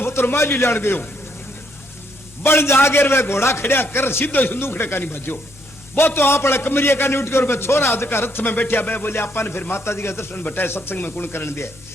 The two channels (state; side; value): normal; both; correlation 0.72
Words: पुत्र माली लियान गयो बन जागे वे घोड़ा खड़िया कर सीधो संदूखड़े का नहीं भजो वो तो आप कमरिया का नहीं उठ कर छोरा का रथ में बैठा बे बोले आपा ने फिर माता जी का दर्शन बटाए सत्संग में कुण करन दिया